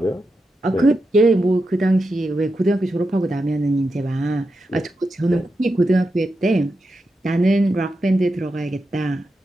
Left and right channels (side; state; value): both; normal; correlation 0.88